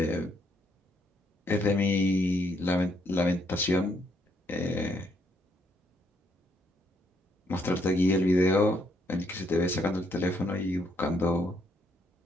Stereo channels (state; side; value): normal; both; correlation 0.72